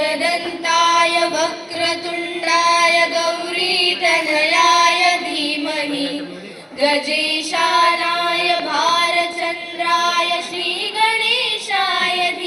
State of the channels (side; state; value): both; identical; correlation 1.00